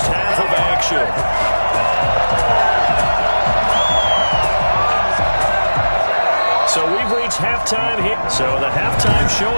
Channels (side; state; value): both; inverted; correlation -1.00